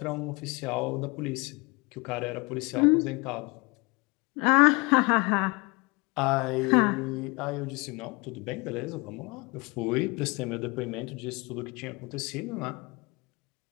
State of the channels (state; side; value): quieter; right; 26.9 dB